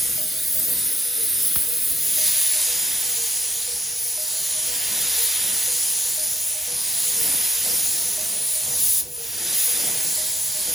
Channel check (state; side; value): normal; both; correlation 0.75